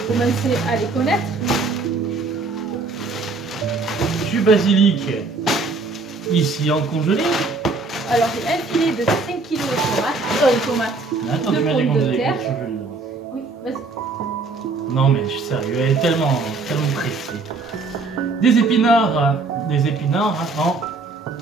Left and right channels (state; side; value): quieter; left; 3.8 dB